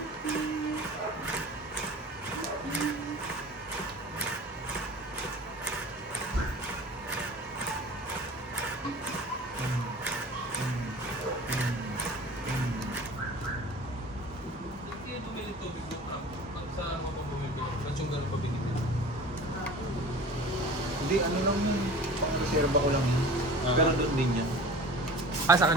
Hindi, ano lang yun. Reserva ko lang yun. Pero doon din yan. Ah, sa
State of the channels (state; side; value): normal; both; correlation 0.40